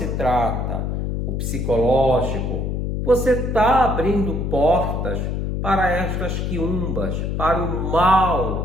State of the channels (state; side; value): noise; left; hum, 1 dB below the sound